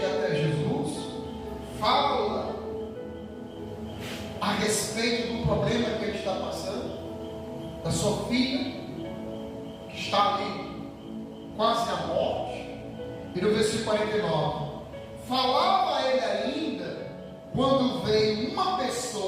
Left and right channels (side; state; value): both; identical; correlation 1.00